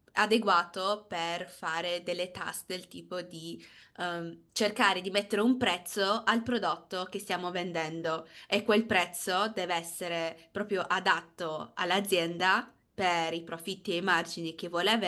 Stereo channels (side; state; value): both; identical; correlation 1.00